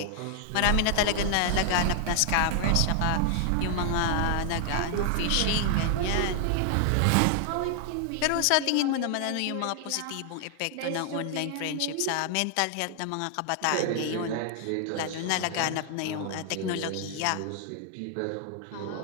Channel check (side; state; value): both; different; correlation 0.00